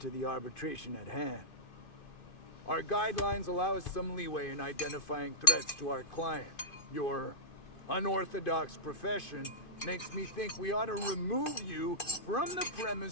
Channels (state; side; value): late; right; 2.5 ms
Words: the arbitration at hand. Our guidelines allow us some leeway in identifying threats to our client. Your unorthodox profession makes me think we ought to remove you from the